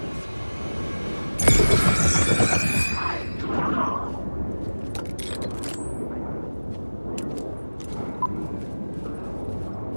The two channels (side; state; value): both; inverted; correlation -1.00